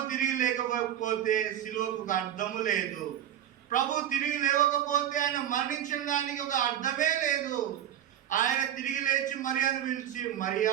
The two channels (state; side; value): quieter; left; 10.8 dB